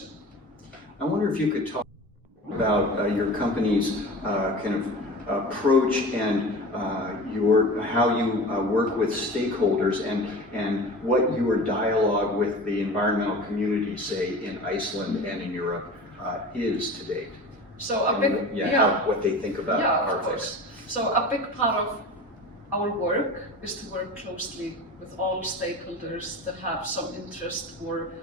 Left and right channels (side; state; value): both; normal; correlation 0.35